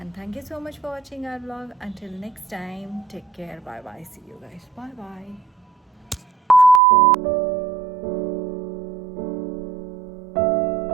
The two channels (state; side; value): drops out; left; at 6.8 s